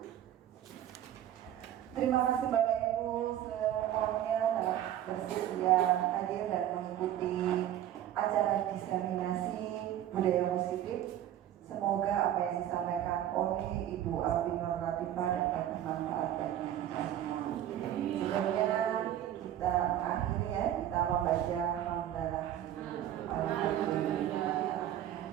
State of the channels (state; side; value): quieter; left; 11.6 dB